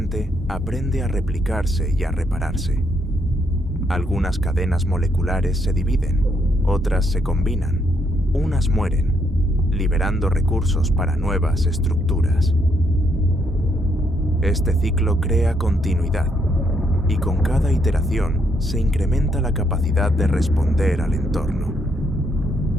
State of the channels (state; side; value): normal; both; correlation 0.74